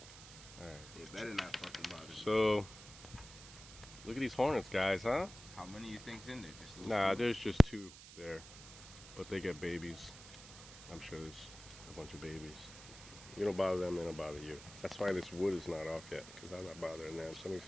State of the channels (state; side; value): noise; right; hiss, 15 dB below the sound